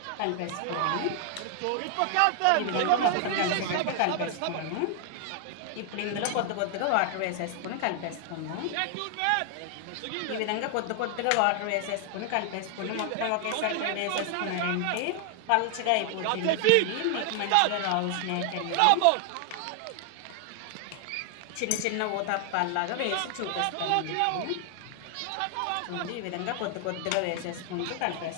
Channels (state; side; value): different; both; correlation 0.00